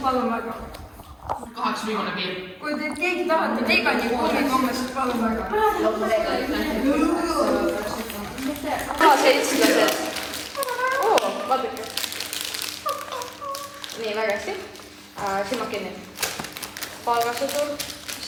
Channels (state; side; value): identical; both; correlation 1.00